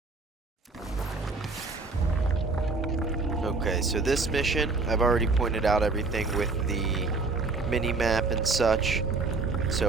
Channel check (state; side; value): quieter; left; 3.8 dB